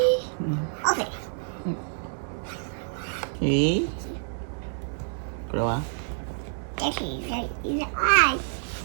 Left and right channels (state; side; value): silent; left; digital silence